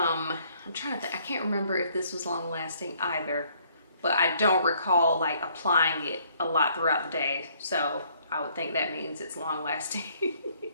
trying to think, I can't remember if this was long lasting either, but I don't recall like applying it a lot throughout the day. So I would think that means it's long lasting.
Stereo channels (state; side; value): inverted; both; correlation -0.64